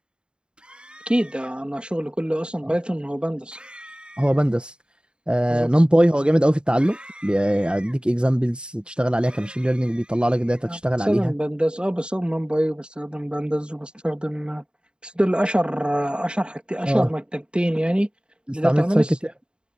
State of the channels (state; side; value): late; left; 0.050 ms